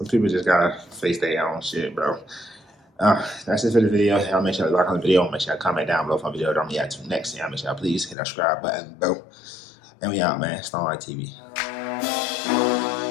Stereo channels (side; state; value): right; drops out; at 8.2 s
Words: people just gotta face their own shit, bro. That's it for the video. Y'all make sure to like on the video. Make sure to comment down below for the video. Don't react to next. Y'all make sure to please hit that subscribe button, bro. And we out, man. StonerLife TV.